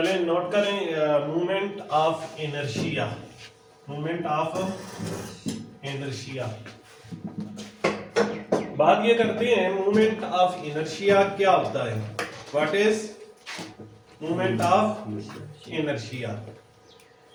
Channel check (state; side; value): identical; both; correlation 1.00